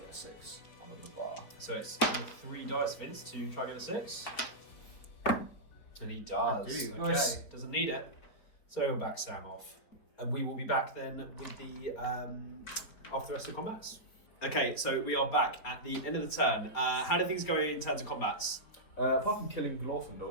a 6 on the bar. so it's 3 dice, Vince, to try and get a 6. And he does. I do. Okay, Nice. doesn't need it. So we'll back Sam off. And we will be back then with the after the rest of the combats. Okay, so we are back at the end of the turn. How did things go in terms of combats? Apart from killing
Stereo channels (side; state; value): right; late; 4.5 ms